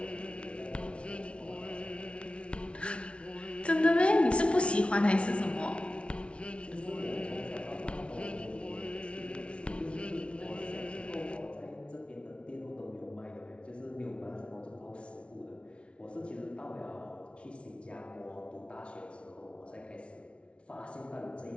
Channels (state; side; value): late; right; 0.060 ms